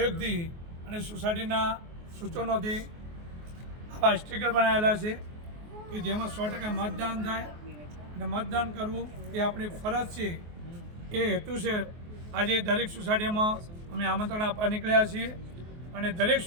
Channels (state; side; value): late; left; 24 ms